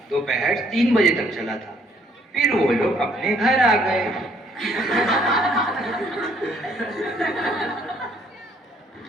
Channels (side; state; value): both; normal; correlation 0.65